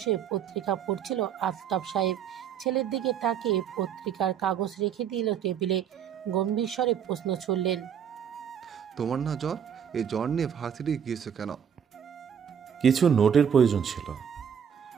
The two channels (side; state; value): left; quieter; 8.2 dB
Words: পত্রিকা পড়ছিল আফতাব সাহেব। ছেলের দিকে তাকিয়ে পত্রিকার কাগজ রেখে দিল টেবিলে। গম্ভীর স্বরে প্রশ্ন ছুড়লেন, তোমার না জ্বর? এই জ্বর নিয়ে ভার্সিটি গিয়েছো কেন? কিছু নোটের প্রয়োজন ছিল।